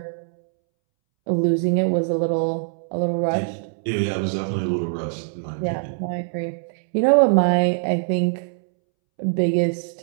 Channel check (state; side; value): silent; left; 64 dB below the other